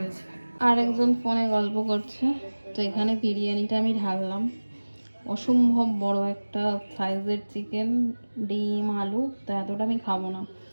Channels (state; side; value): inverted; both; correlation -1.00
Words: আর একজন ফোনে গল্প করছে, তো এখানে বিরিয়ানিটা আমি ঢাললাম। অসম্ভব বড় একটা সাইজের চিকেন, ডিম, আলু, তো এতটা আমি খাবো না।